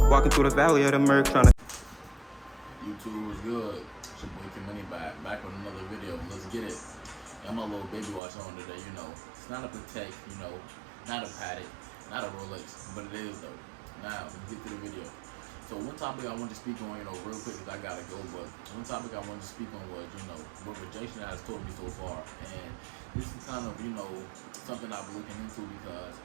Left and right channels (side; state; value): left; drops out; at 8.2 s